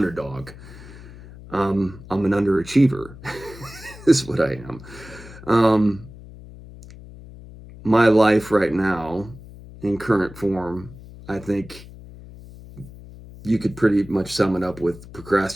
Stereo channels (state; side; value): noise; left; hum, 17 dB below the sound